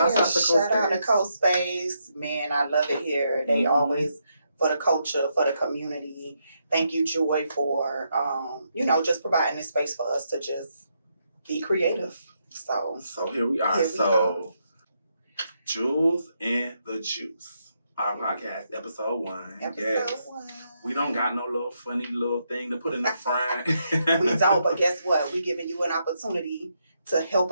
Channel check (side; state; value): both; inverted; correlation -0.79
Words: out to Coast Space. Man, I love it here. They always, for the culture, for the community. Thank you, Joy, for, just providing this space for us to just be creative. So here we are. Jules and the Juice. Our podcast, episode 1. Episode 1. We don't got no little funny little thing to put in the front. We don't, but guess what? We're giving you an opportunity to help